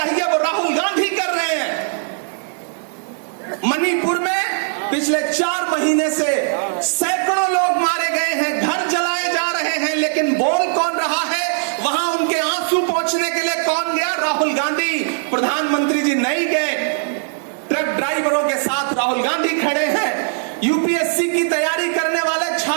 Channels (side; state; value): left; silent; digital silence